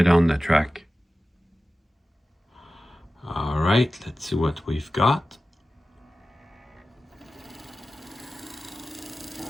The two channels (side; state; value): both; normal; correlation 0.94